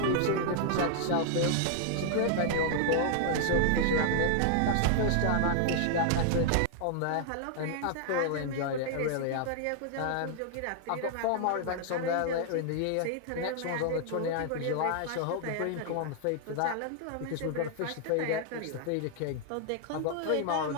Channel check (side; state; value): both; different; correlation 0.00